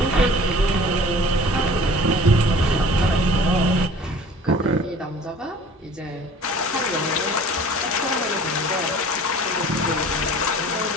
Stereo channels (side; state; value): both; normal; correlation 0.47